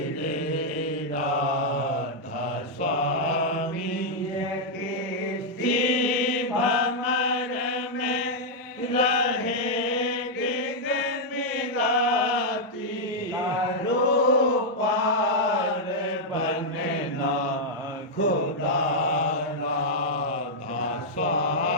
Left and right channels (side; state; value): both; normal; correlation -0.04